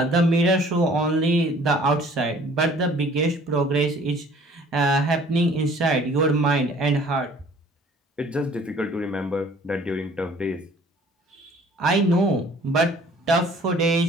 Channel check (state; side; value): normal; both; correlation 0.53